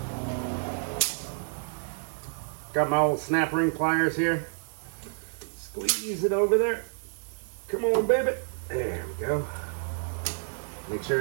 Got my old snap ring pliers here. Squeeze it over there. Come on, baby. There we go. Make sure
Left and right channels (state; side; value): silent; left; 58 dB below the other